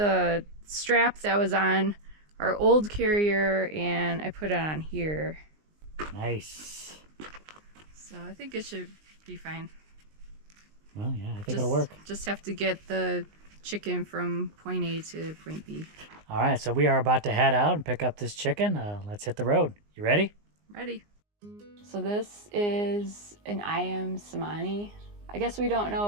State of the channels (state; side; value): late; left; 19 ms